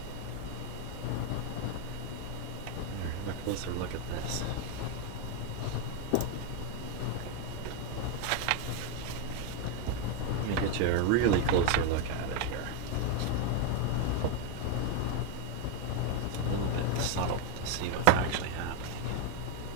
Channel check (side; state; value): both; different; correlation 0.02